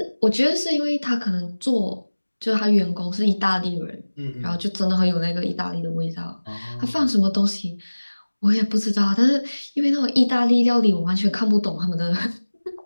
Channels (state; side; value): inverted; both; correlation -1.00